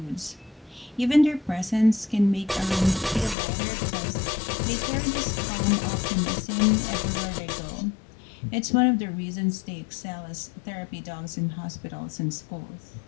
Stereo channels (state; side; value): drops out; right; at 3.4 s